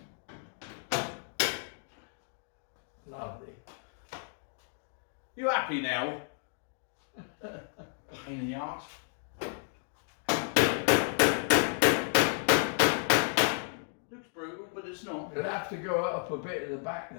Lovely. You happy now? Pain in the arse. Looks brutal, but it's not. You'll have to go up a bit at the back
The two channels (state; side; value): silent; right; 56 dB below the other